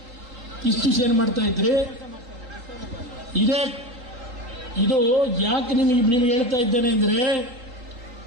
ಇದು ಯಾಕೆ ನಿಮಗೆ ಹೇಳ್ತಾ ಇದ್ದೇನೆ ಅಂದ್ರೆ,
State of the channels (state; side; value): late; left; 3.9 ms